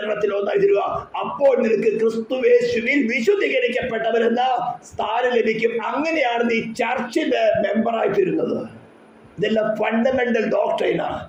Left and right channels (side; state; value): both; identical; correlation 1.00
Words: ഒന്നായി തരുക. അപ്പോൾ നിനക്ക് ക്രിസ്തുവേശുവിൽ വിശുദ്ധീകരിക്കപ്പെട്ടവരെന്ന സ്ഥാനം ലഭിക്കും. അങ്ങനെയാണ് നീ ചർച്ചിന്റെ മെമ്പറായി തീരുന്നത്. ഇതെല്ലാം ഫണ്ടമെന്റൽ ഡോക്ട്രൈനാണ്.